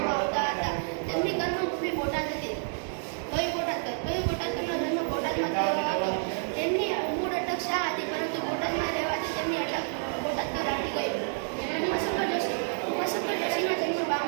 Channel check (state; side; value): silent; left; 58 dB below the other